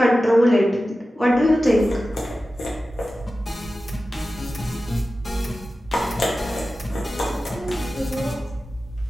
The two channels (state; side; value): normal; both; correlation 0.94